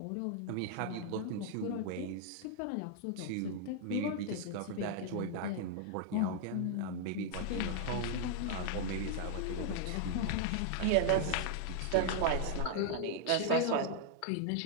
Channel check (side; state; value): both; different; correlation 0.00